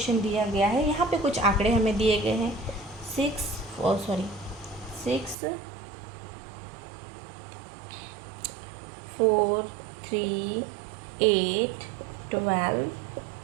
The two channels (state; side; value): drops out; left; at 5.4 s